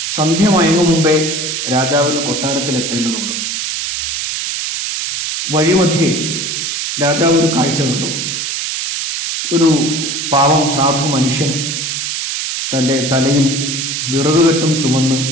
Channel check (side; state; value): right; noise; hiss, 3 dB below the sound